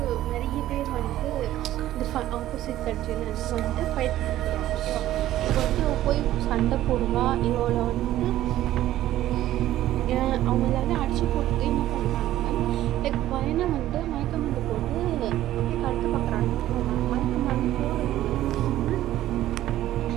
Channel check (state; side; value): quieter; left; 13.8 dB